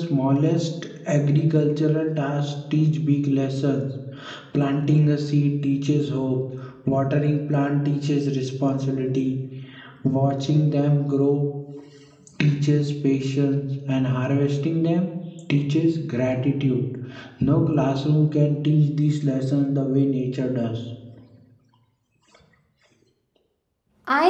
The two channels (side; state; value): both; identical; correlation 1.00